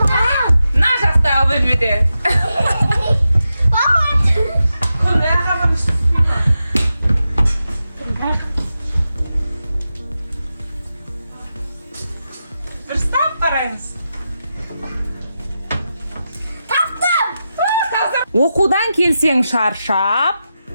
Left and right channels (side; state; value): both; inverted; correlation -0.89